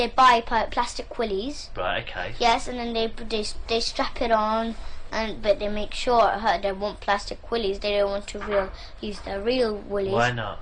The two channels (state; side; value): identical; both; correlation 1.00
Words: buy plastic willies. Right, okay. Yes, and then they strap it on, but they make sure it hurt. They want plastic willies. They don't want to use their real willies. Why not?